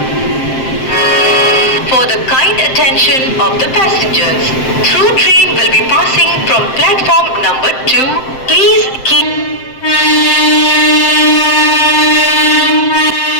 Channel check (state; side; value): late; right; 7.6 ms